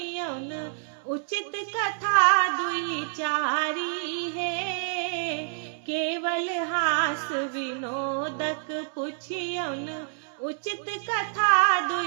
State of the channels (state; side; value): silent; left; digital silence